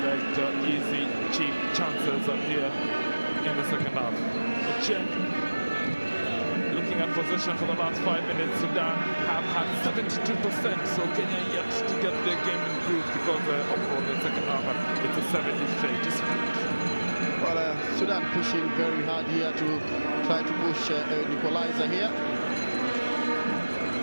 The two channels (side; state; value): both; inverted; correlation -1.00